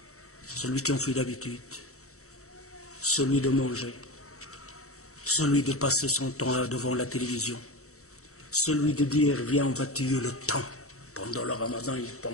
Celui qui en fait d'habitude, celui de manger, celui de passer son temps devant la télévision, celui de dire viens on va tuer le temps. Pendant le ramadan il ne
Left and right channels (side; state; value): right; late; 0.64 ms